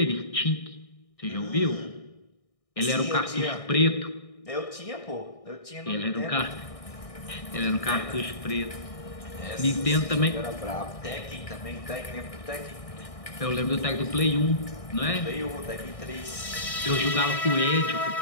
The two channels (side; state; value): right; late; 1.6 ms